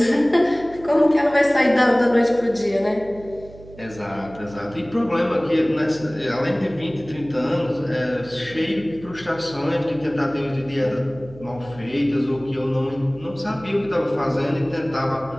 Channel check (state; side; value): noise; right; hum, 19 dB below the sound